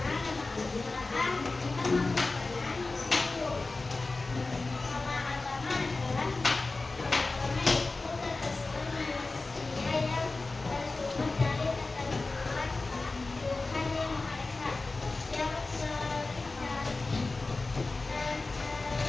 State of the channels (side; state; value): right; quieter; 3.5 dB